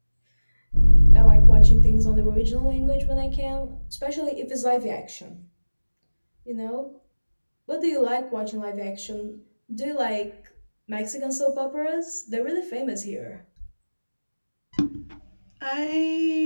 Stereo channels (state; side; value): inverted; both; correlation -1.00